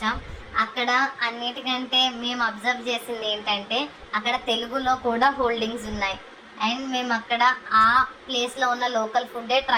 అక్కడ అన్నిటికంటే మేము అబ్జర్వ్ చేసింది ఏంటంటే అక్కడ తెలుగులో కూడా హోల్డింగ్స్ ఉన్నాయి. అండ్ మేము అక్కడ ఆ ప్లేస్లో ఉన్న లోకల్ ఫుడ్డే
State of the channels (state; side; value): identical; both; correlation 1.00